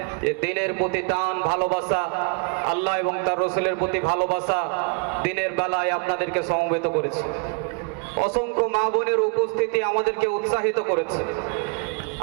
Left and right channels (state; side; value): quieter; left; 36.0 dB